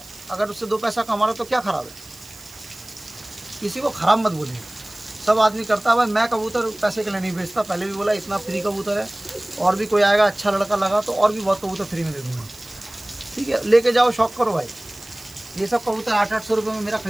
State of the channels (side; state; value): right; noise; hiss, 21 dB below the sound